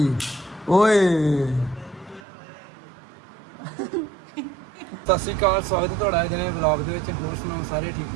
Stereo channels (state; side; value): drops out; left; at 2.2 s